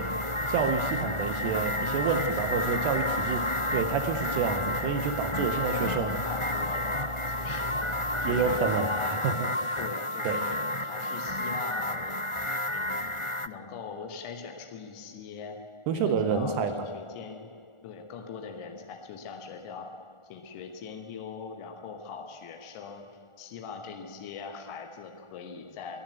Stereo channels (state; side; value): late; right; 1.4 ms